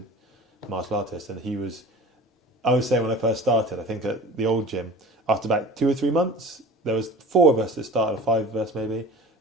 martial artist, and I was saying when I first started, I think at the old gym, after about 2 or 3 months, there was 4 of us that started, or 5 of us maybe,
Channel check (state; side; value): normal; both; correlation 0.39